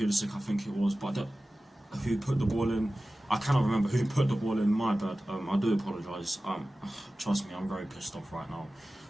I think it was, but who put the ball in? I cannot remember who put the ball in, my bad. I do apologise. Trust me, I'm very pissed off right now.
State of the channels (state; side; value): normal; both; correlation 0.96